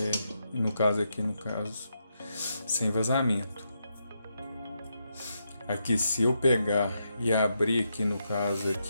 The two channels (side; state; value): both; inverted; correlation -0.82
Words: no caso aqui, sem vazamento. Aqui se eu pegar e abrir aqui no caso